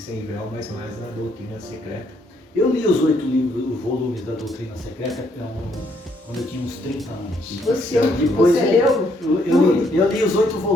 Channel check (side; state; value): both; normal; correlation 0.71